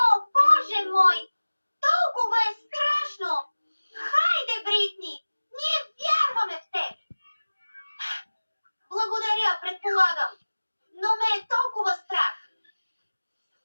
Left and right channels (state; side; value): inverted; both; correlation -1.00